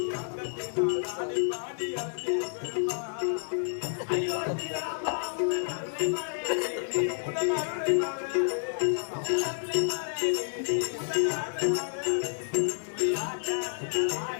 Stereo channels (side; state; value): right; silent; digital silence